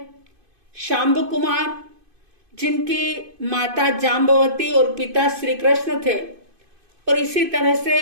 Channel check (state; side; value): late; left; 2.5 ms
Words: शांब कुमार, जिनकी माता जाम्बवती और पिता श्री कृष्ण थे, और इसी तरह से